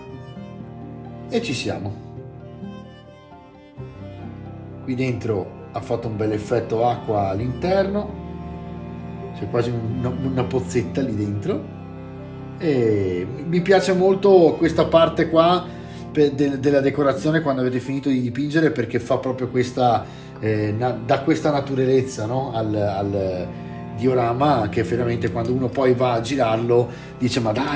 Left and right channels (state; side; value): identical; both; correlation 1.00